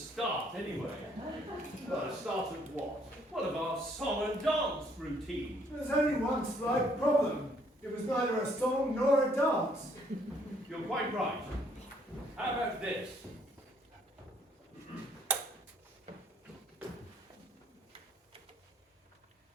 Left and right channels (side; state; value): both; normal; correlation 0.66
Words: anyway. Well, a start of what? What of our song and dance routine? There's only one slight problem. It was neither a song nor a dance. You're quite right. How about this?